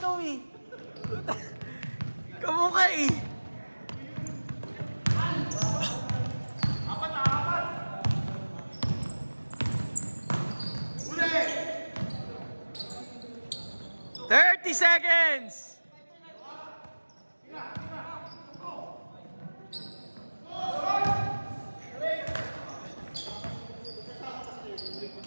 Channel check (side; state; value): both; inverted; correlation -1.00